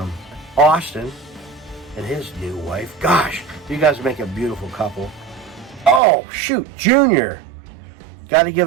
Austin and his new wife. Gosh, you guys make a beautiful couple. Oh, shoot, Junior. Got to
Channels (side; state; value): left; drops out; at 6.0 s